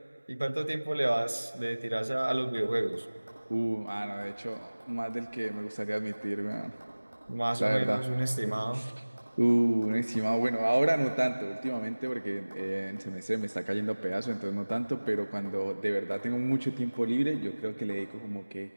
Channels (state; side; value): inverted; both; correlation -1.00